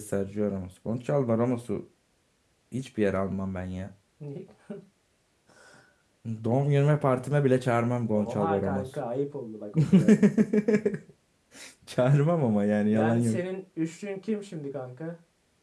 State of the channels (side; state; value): both; identical; correlation 1.00